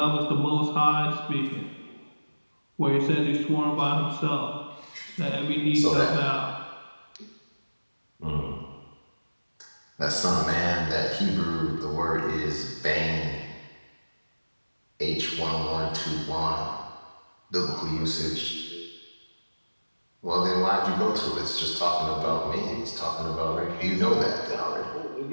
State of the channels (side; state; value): both; inverted; correlation -1.00